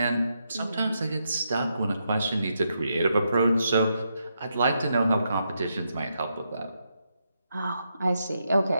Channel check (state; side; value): inverted; both; correlation -0.82